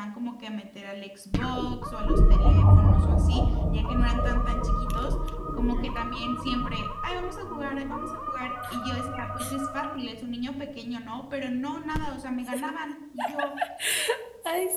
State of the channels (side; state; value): both; identical; correlation 1.00